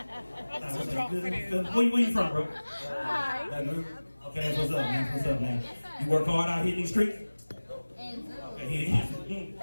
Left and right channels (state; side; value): inverted; both; correlation -1.00